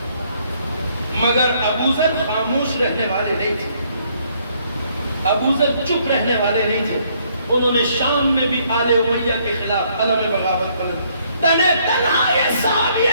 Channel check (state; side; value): inverted; both; correlation -0.68